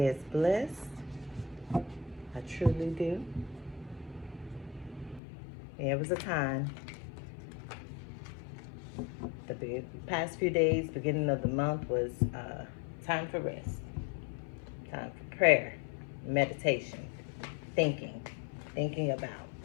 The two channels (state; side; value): drops out; right; at 5.2 s